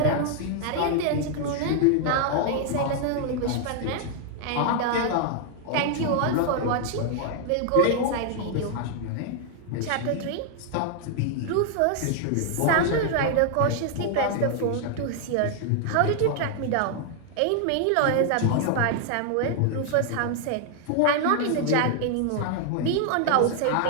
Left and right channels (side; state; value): both; different; correlation 0.00